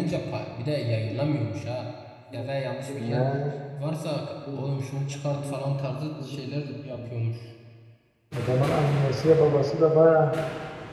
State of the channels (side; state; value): both; identical; correlation 1.00